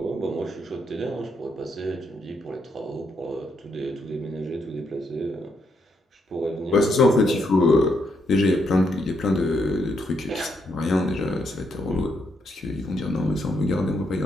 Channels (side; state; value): both; normal; correlation 0.77